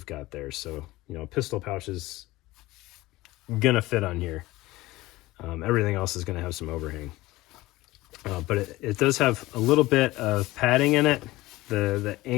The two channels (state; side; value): quieter; right; 18.7 dB